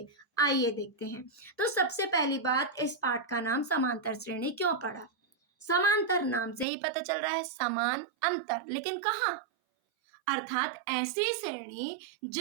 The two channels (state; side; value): drops out; left; at 6.7 s